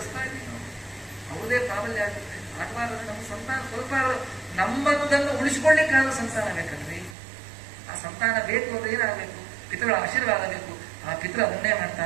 ಇದ್ದೀವಿ ನಾವು. ಅವ್ರದೇ ಪ್ರಾಬಲ್ಯ ಆಗುತ್ತೆ. ಆಗಬಾರ್ದು. ನಮ್ಮ ಸಂತಾನ ಸ್ವಲ್ಪ ನಮ್ಮದನ್ನು ಉಳಿಸ್ಕೊಳ್ಳಿಕ್ಕಾದ ಸಂತಾನ ಬೇಕಲ್ರಿ. ಆ ಸಂತಾನ ಬೇಕು ಅಂದ್ರೆ ಏನಾಗಬೇಕು? ಪಿತೃಗಳ ಆಶೀರ್ವಾದ ಬೇಕು. ಆ ಪಿತೃ ಅದನ್ನೇ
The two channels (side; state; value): left; drops out; at 7.2 s